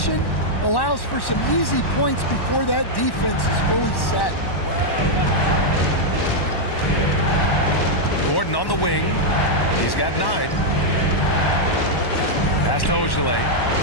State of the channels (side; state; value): right; late; 1.1 ms